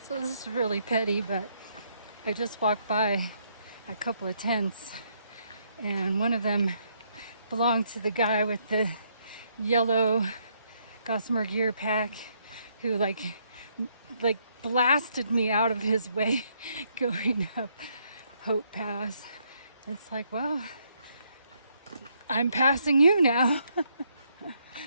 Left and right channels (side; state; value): both; inverted; correlation -0.73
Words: So this is really petty, but I just walked by a couple of tents, and one of them belonged to the guy with the yellow Gossamer gear pack who like blasted me out of his way going up Hope Pass. It's like, well, I'm passing you now.